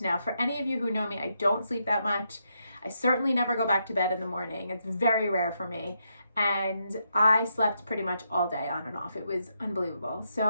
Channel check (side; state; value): both; inverted; correlation -0.80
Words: for any of you who know me, I don't sleep that much. I certainly never go back to bed in the morning. It's very rare for me. And I slept pretty much all day on and off. It was unbelievable.